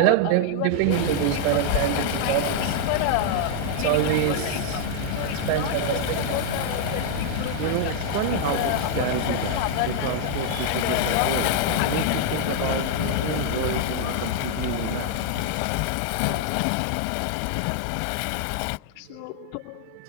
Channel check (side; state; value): both; different; correlation 0.00